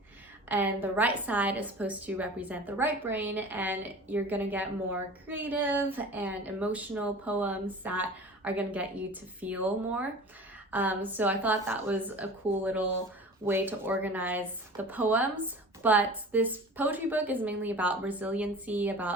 And the right side is supposed to represent the right brain, and you're gonna get more creative and emotional poems that are gonna get you to feel more. So I thought that was a cool little way to organize the poems. But this poetry book is mainly about resiliency,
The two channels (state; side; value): normal; both; correlation 0.39